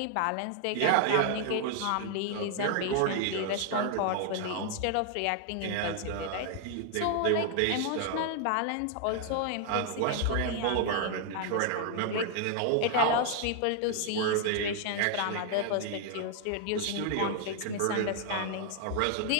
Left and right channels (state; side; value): different; both; correlation 0.00